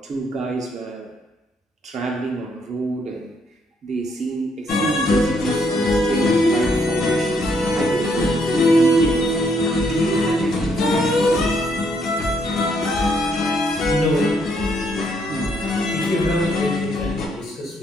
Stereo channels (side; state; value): both; normal; correlation 0.72